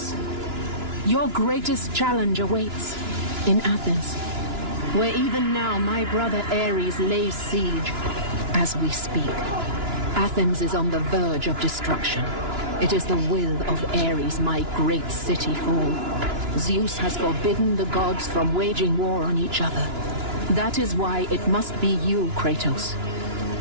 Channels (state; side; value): late; left; 2.9 ms